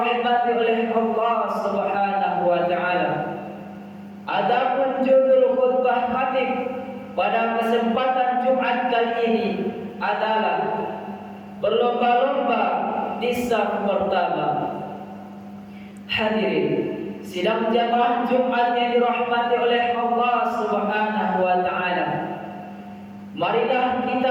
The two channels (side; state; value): both; identical; correlation 1.00